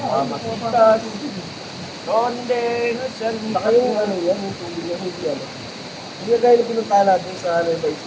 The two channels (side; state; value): both; identical; correlation 1.00